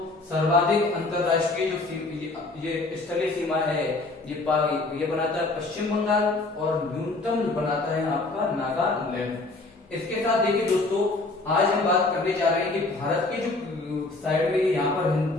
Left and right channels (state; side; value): quieter; right; 3.2 dB